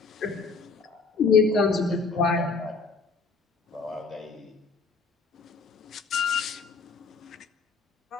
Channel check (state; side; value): quieter; right; 4.5 dB